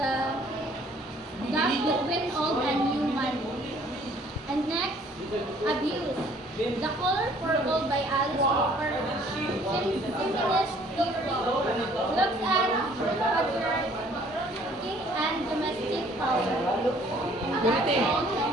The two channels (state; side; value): normal; both; correlation 0.58